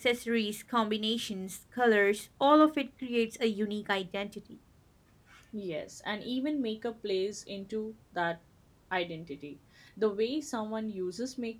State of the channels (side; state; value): both; identical; correlation 1.00